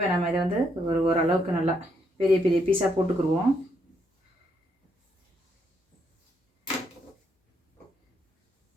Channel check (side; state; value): both; normal; correlation 0.75